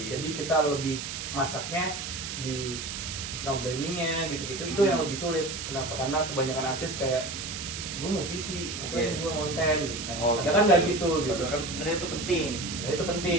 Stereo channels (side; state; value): right; noise; hiss, 6 dB below the sound